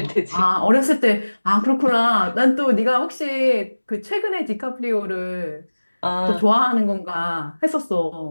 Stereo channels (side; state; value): both; inverted; correlation -1.00